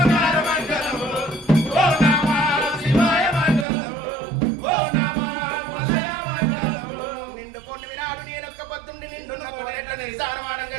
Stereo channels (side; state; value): left; drops out; at 3.7 s